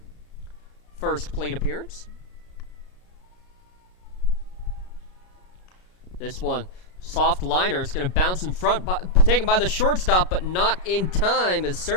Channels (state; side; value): late; right; 33 ms